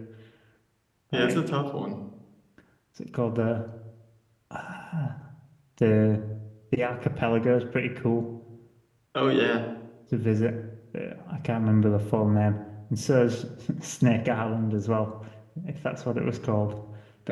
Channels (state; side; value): identical; both; correlation 1.00